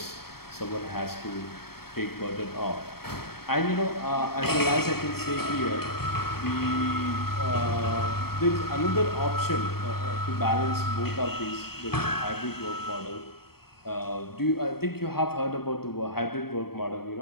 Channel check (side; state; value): right; late; 0.95 ms